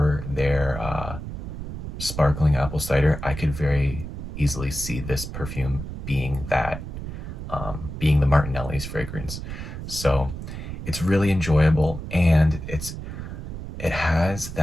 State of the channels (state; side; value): noise; right; rumble, 8 dB below the sound